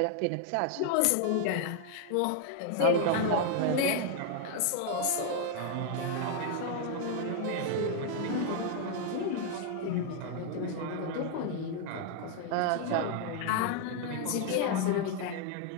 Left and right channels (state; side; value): different; both; correlation 0.00